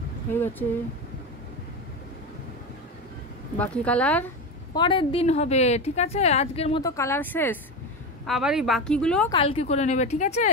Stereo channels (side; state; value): both; normal; correlation 0.20